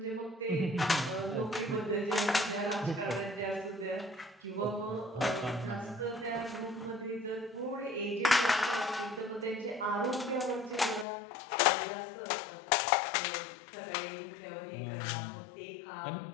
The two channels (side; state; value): right; drops out; at 11.1 s